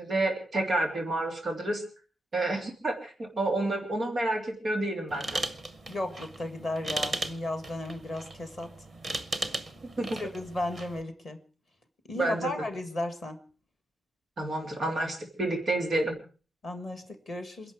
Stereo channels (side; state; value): both; normal; correlation 0.83